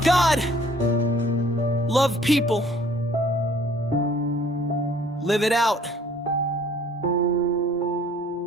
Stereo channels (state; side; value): normal; both; correlation 0.56